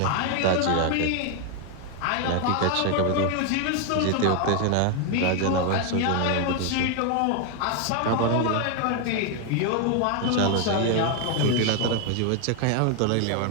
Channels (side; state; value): both; different; correlation 0.01